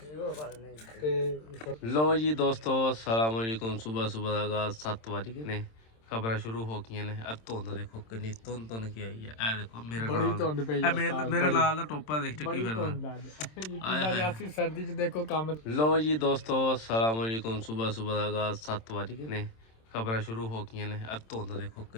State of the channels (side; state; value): right; late; 27 ms